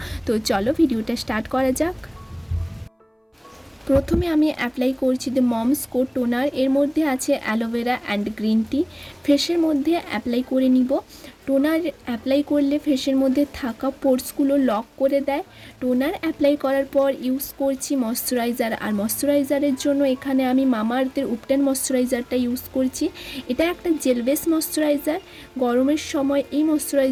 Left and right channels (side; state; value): both; identical; correlation 1.00